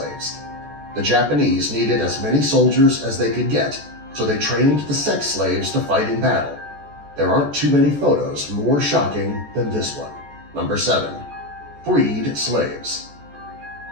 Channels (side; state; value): left; late; 14 ms